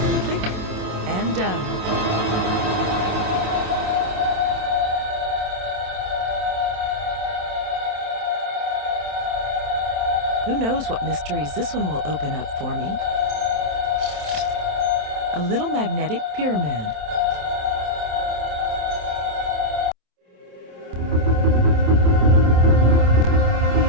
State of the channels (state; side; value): late; left; 27 ms